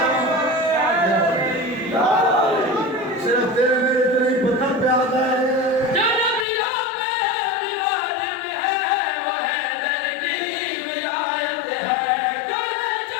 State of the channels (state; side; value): drops out; right; at 6.5 s